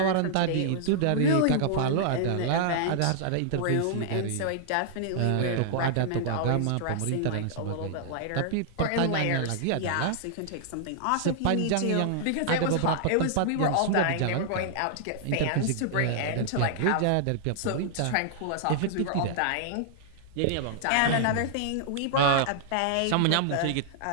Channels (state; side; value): different; both; correlation -0.01